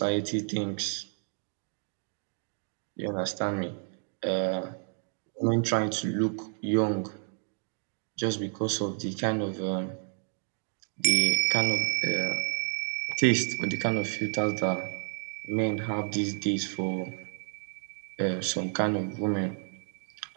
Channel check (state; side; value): silent; left; 55 dB below the other